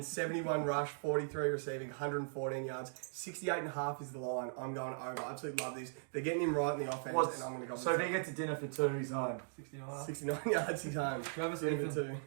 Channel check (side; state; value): left; silent; digital silence